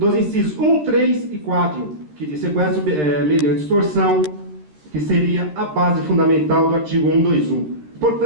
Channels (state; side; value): late; left; 13 ms